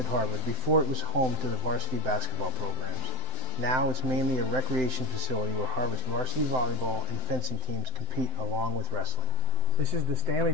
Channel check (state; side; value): late; left; 7.8 ms